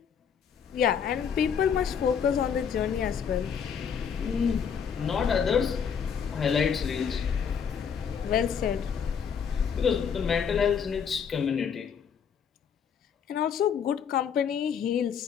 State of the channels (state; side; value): quieter; right; 7.2 dB